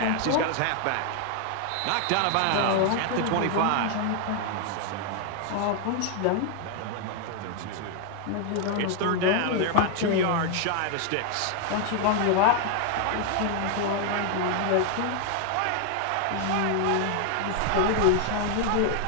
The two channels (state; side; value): different; both; correlation 0.00